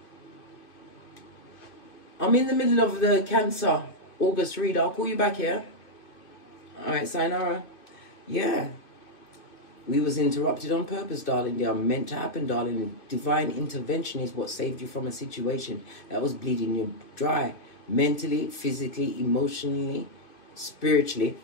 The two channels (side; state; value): right; late; 2.7 ms